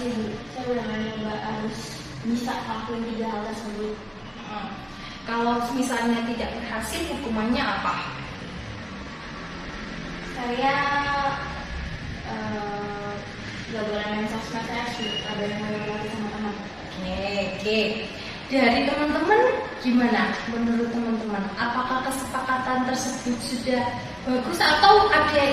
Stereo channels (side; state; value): both; identical; correlation 1.00